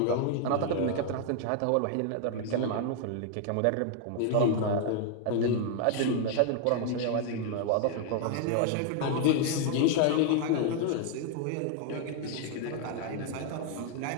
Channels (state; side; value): different; both; correlation 0.00